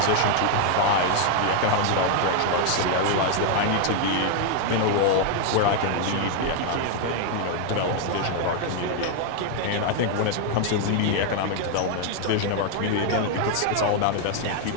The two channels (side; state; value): both; different; correlation 0.01